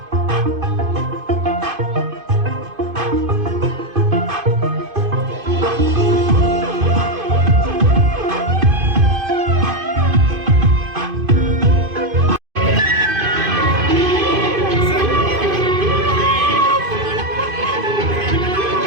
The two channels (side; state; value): left; late; 2.5 ms